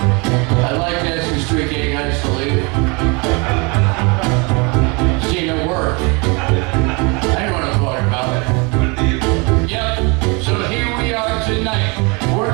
I like asking street gay guys to leave. See, it worked. Tonight, we're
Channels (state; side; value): quieter; left; 29.6 dB